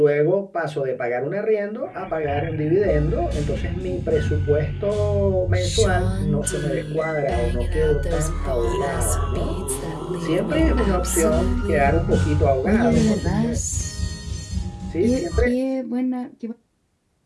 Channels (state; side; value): identical; both; correlation 1.00